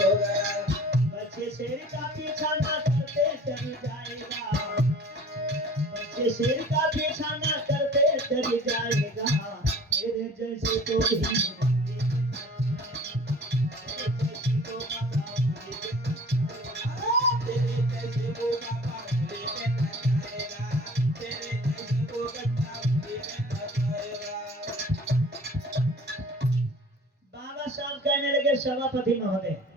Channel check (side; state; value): both; normal; correlation 0.46